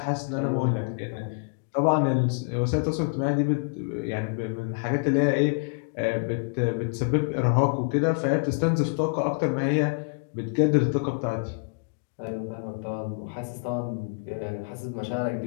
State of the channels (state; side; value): quieter; right; 37.9 dB